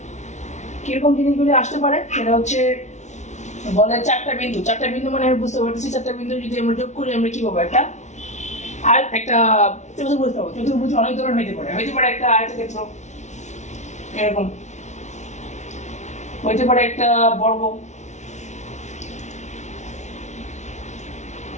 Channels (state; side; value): late; right; 0.33 ms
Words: কিরকম জিনিসগুলি আসতে পারে সেটা হচ্ছে বলে চারটা বিন্দু মানে আমি বুঝতে পারতেছি চারটা বিন্দু যদি আমরা যোগ করি আমরা কি পাবো? একটা আর একটা চতুর্ভুজ পাবো। চতুর্ভুজ অনেক ধরনের হইতে পারে একটা আয়তক্ষেত্র, এরকম হইতে পারে একটা বর্গ,